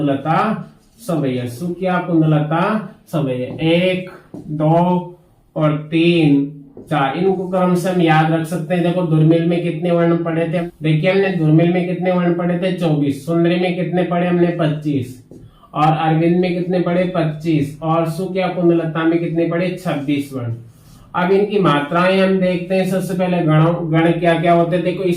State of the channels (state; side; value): identical; both; correlation 1.00